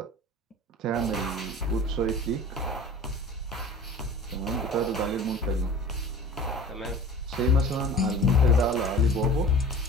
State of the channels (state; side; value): normal; both; correlation 0.40